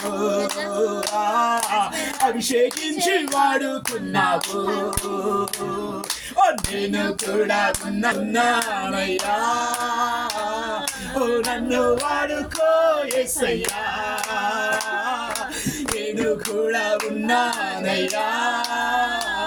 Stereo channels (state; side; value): identical; both; correlation 1.00